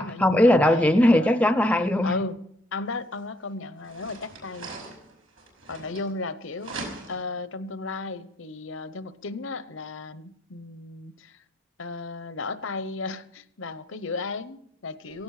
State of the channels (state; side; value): normal; both; correlation 0.69